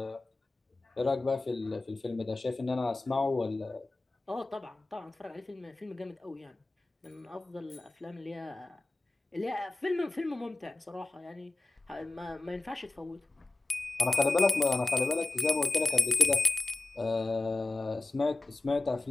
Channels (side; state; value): right; quieter; 3.1 dB